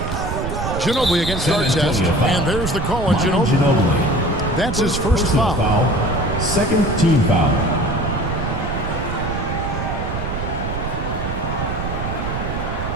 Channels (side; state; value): right; noise; rumble, 4 dB below the sound